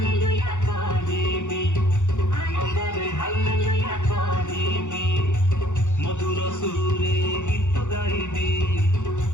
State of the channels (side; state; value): right; late; 0.85 ms